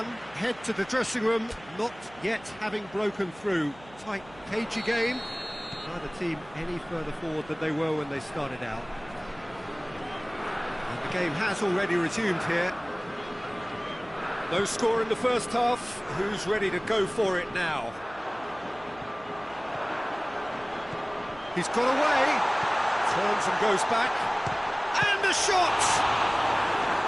head to the dressing room, not yet having broken through. Tight, cagey game. Neither team any further forward than they were when they started out. And the game has already resumed here. No score in the first half. Who's ready to go for it now? He's got away. Turns and goes back. And the shot!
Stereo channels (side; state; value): right; noise; hum, 22 dB below the sound